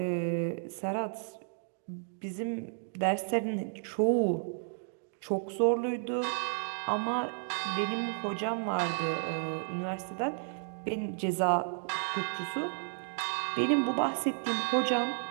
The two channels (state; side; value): silent; left; digital silence